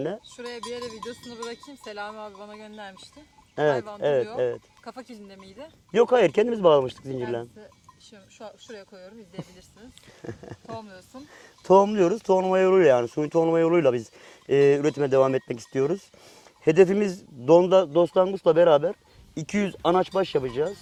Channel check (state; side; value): identical; both; correlation 1.00